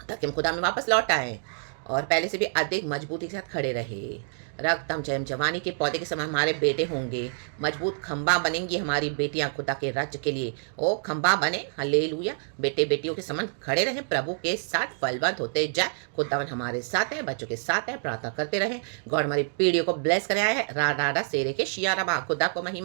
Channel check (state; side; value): silent; left; digital silence